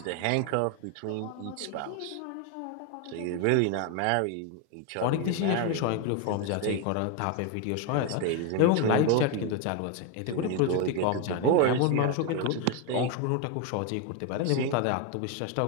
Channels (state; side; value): different; both; correlation 0.01